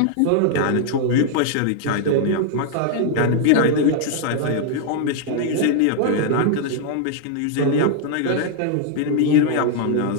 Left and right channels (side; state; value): both; different; correlation 0.00